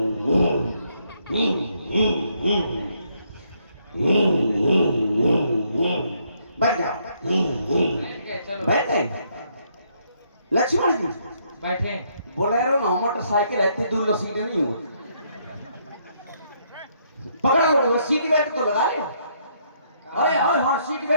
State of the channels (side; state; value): both; inverted; correlation -0.71